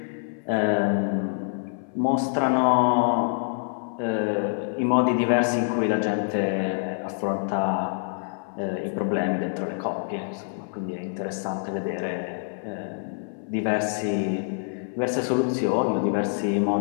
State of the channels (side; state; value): right; silent; 61 dB below the other